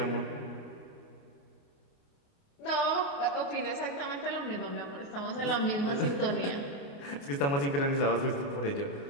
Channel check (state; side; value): late; right; 28 ms